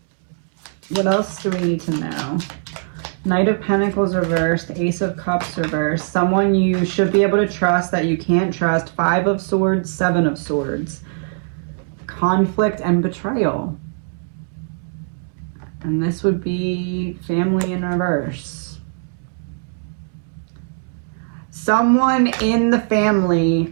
What else do we need to know? Knight of Pentacles reversed, Ace of Cups reversed, someone you should be able to trust that you can't trust, Five of Swords, Seven of Swords, conflict and betrayal. And this would be family in reverse. Someone in the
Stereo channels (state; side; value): silent; left; 65 dB below the other